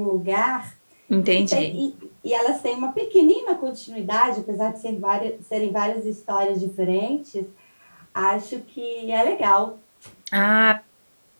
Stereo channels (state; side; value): inverted; both; correlation -1.00